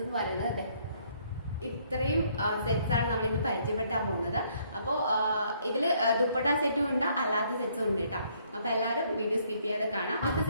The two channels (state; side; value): inverted; both; correlation -0.67